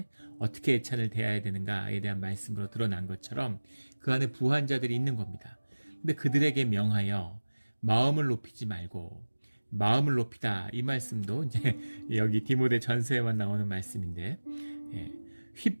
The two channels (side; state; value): both; inverted; correlation -1.00